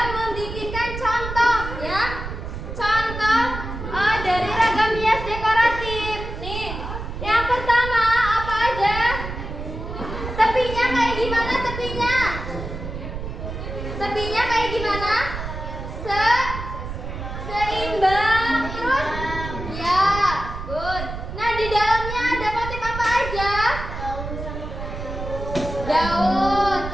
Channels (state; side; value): noise; right; rumble, 7 dB below the sound